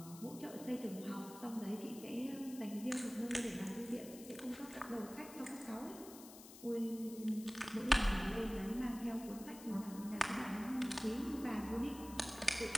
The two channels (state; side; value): noise; left; hiss, 16 dB below the sound